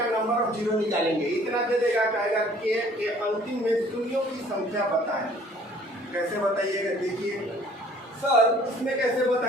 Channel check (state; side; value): normal; both; correlation 0.55